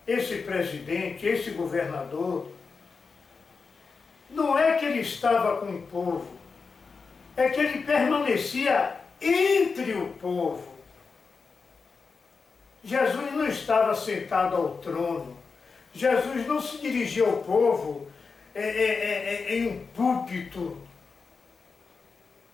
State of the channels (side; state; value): right; quieter; 4.9 dB